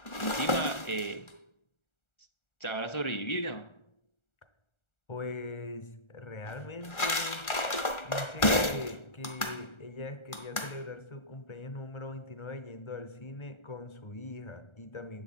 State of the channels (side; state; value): right; late; 1.4 ms